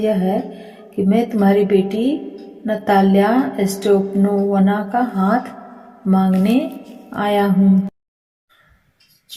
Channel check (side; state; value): both; identical; correlation 1.00